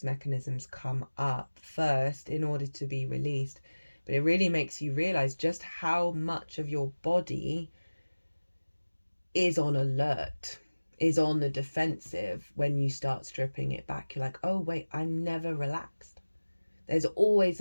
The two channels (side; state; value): both; inverted; correlation -1.00